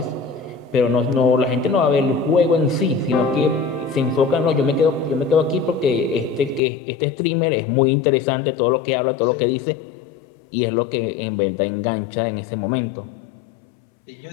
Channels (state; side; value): drops out; right; at 6.6 s